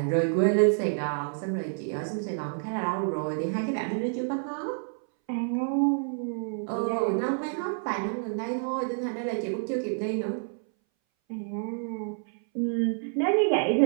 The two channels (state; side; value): silent; left; 59 dB below the other